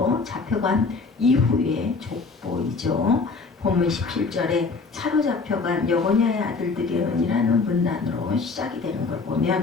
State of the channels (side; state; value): right; quieter; 4.3 dB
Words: 잡혀간 이후의 족보이죠. 본문 17절에 차로 잡혀간 여고냐의 아들들이라는 문단으로 시작이 되는 걸